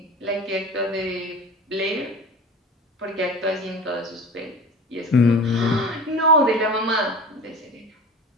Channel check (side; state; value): both; normal; correlation 0.35